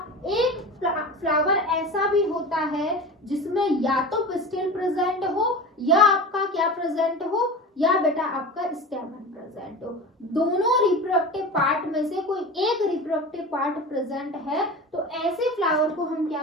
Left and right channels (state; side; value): normal; both; correlation 0.31